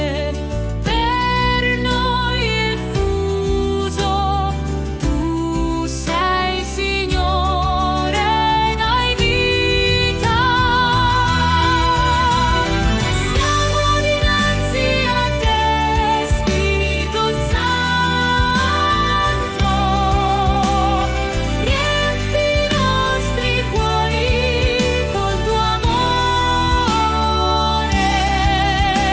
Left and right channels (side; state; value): both; identical; correlation 1.00